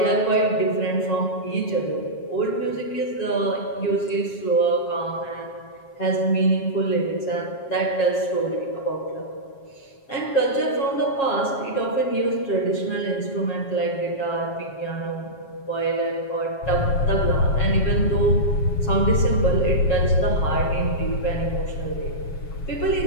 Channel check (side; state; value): right; late; 7.3 ms